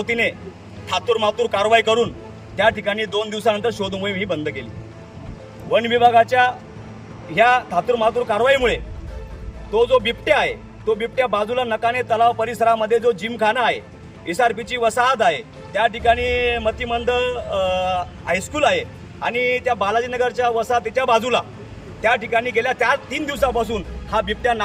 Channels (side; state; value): both; identical; correlation 1.00